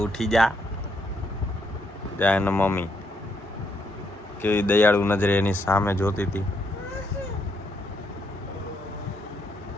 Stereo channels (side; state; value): both; normal; correlation 0.75